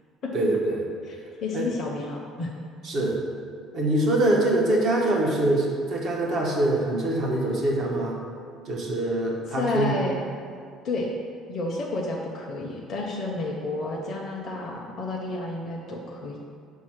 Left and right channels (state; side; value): normal; both; correlation 0.55